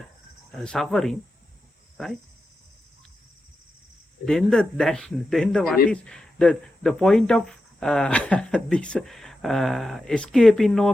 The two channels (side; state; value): both; normal; correlation 0.90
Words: suffering, right? Then then what is the point of this escaping or